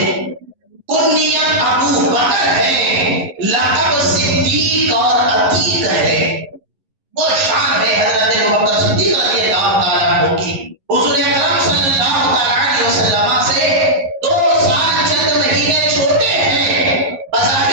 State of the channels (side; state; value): left; late; 11 ms